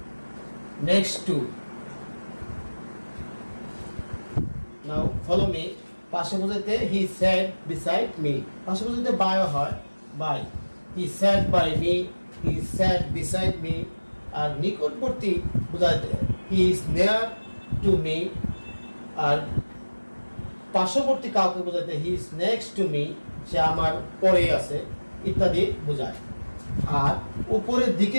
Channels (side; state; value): both; inverted; correlation -1.00